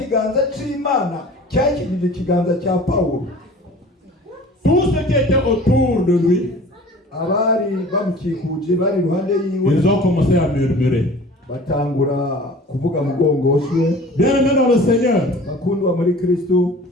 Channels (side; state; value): both; normal; correlation 0.44